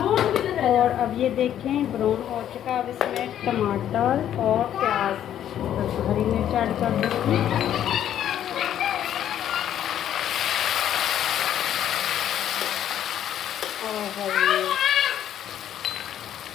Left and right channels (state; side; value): quieter; right; 10.7 dB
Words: और अब ये देखें, ब्राउन हो चुका है। अब इसमें टमाटर और प्याज, हरी मिर्च ऐड कर दूँगी।